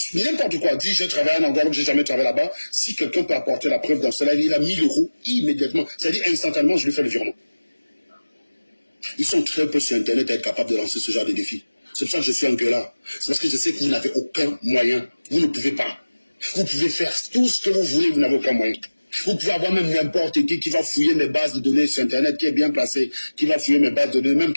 n'importe quoi. Dit, j'ai travaillé à un endroit où j'ai jamais travaillé là-bas. Si quelqu'un peut apporter la preuve dans ce live, il a 1000 € immédiatement. C'est-à-dire instantanément, je lui fais le virement. Ils sont très peu sur Internet à être capables de lancer ce genre de défi. C'est pour ça que je suis un gueulard. C'est parce que je sais que vous n'avez aucun moyen. Vous ne pouvez pas. Vous pouvez faire tout ce que vous voulez, vous n'avez aucun moyen. Vous pouvez avoir même n'importe qui va fouiller mes bases de données sur Internet, qui est bien placé, qui va fouiller mes bases de données, même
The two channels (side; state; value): both; inverted; correlation -1.00